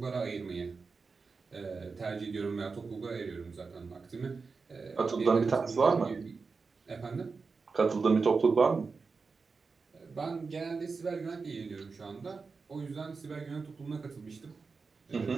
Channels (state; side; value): quieter; left; 4.6 dB